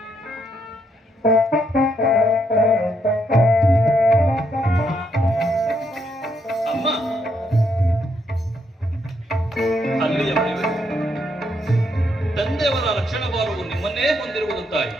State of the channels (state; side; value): normal; both; correlation 0.76